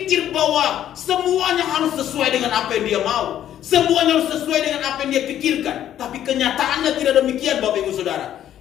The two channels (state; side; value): quieter; right; 11.2 dB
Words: bahwa semuanya harus sesuai dengan apa yang dia mau, semuanya harus sesuai dengan apa yang dia pikirkan. Tapi kenyataannya tidak demikian, Bapak Ibu Saudara.